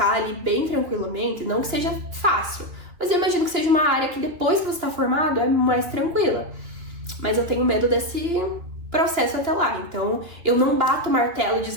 ali bem tranquilamente, não que seja fácil, mas eu imagino que seja uma área que depois que você está formado é mais tranquila. Mas eu tenho medo desse processo até lá, então eu não bato o martelo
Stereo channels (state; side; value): late; left; 3.1 ms